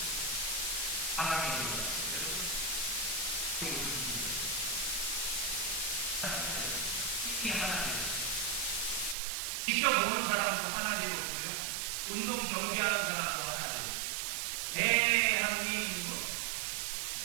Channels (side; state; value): left; drops out; at 9.2 s